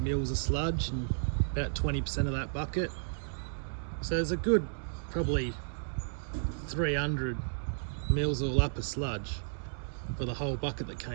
of sludge and about 20% of that bucket. So there's a good probably 300 mils all up of sludge for the whole bucket that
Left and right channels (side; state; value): left; silent; digital silence